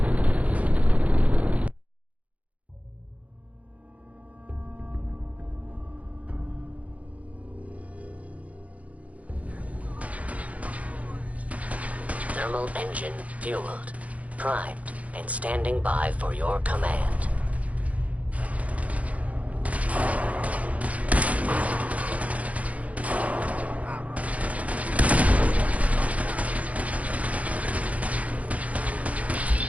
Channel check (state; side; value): late; left; 0.067 ms